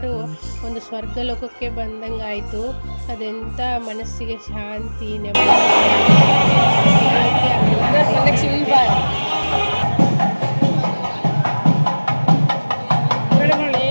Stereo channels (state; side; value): inverted; both; correlation -1.00